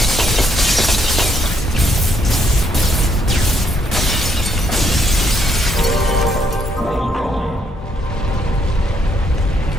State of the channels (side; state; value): both; normal; correlation 0.73